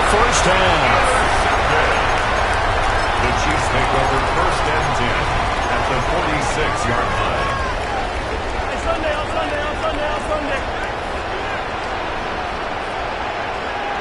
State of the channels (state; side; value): identical; both; correlation 1.00